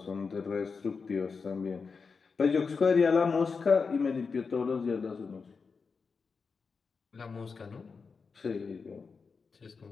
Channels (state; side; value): quieter; right; 5.0 dB